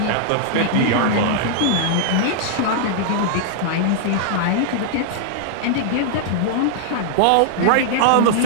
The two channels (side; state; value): both; different; correlation -0.01